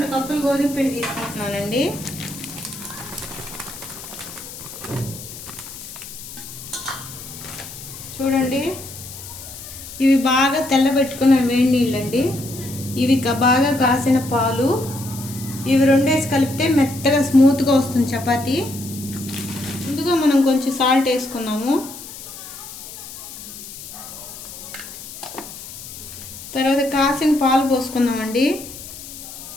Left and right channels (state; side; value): noise; left; hiss, 13 dB below the sound